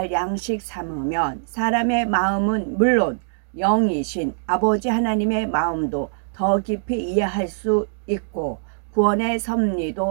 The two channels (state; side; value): silent; left; digital silence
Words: 양식 삼으면 사람의 마음은 물론 영이신 아버지 하나님의 마음도 더 깊이 이해할 수 있고 구원의